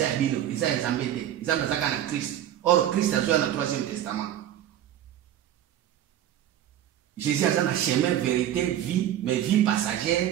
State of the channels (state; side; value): quieter; left; 11.4 dB